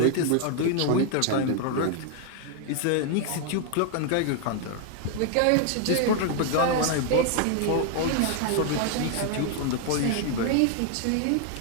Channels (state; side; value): different; both; correlation 0.00